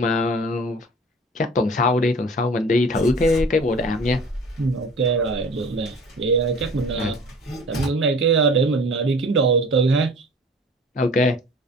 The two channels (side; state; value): both; normal; correlation 0.44